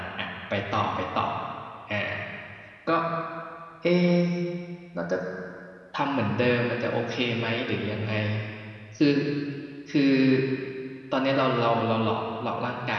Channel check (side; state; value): both; identical; correlation 1.00